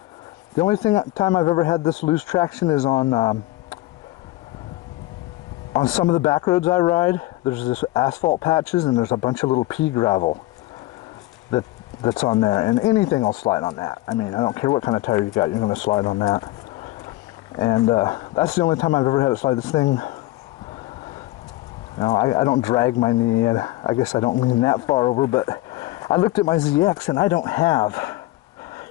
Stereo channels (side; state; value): right; quieter; 18.3 dB